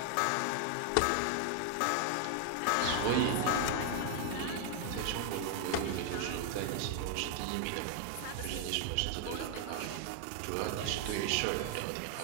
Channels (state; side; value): different; both; correlation 0.00